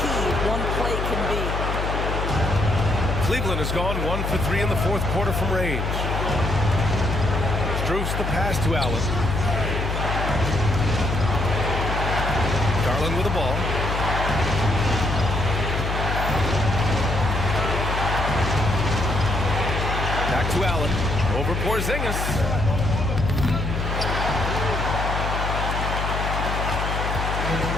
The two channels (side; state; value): left; noise; hum, 2 dB below the sound